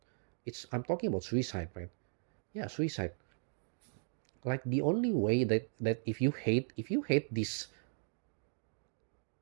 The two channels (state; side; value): silent; left; digital silence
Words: I'm talking about suicide, right? Yeah, suicide. Like the only way that if you hate this